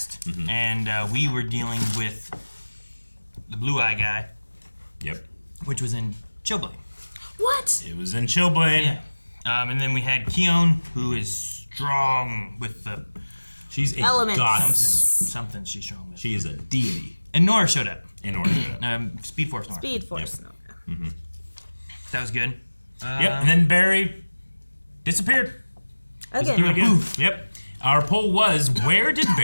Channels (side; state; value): both; inverted; correlation -1.00